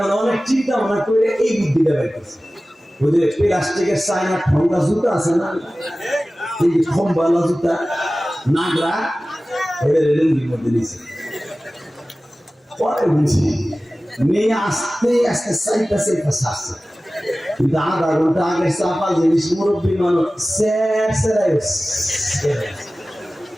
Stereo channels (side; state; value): both; normal; correlation 0.96